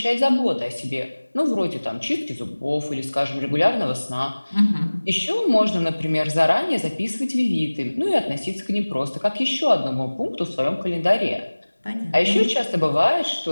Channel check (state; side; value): inverted; both; correlation -1.00